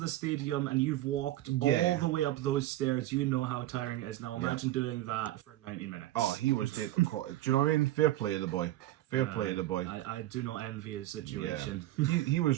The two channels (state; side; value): quieter; left; 15.0 dB